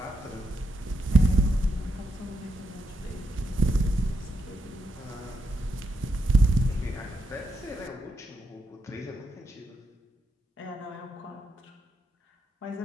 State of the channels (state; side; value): normal; both; correlation 0.81